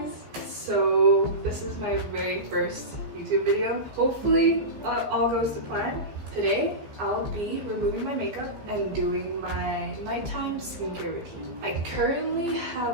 So this is my very first YouTube video. Hopefully all goes to plan. Today I'll be removing my makeup and doing my nighttime skincare routine. I currently have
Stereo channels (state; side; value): late; left; 15 ms